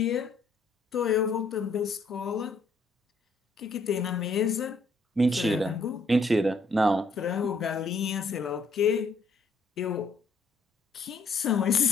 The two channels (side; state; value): right; quieter; 3.4 dB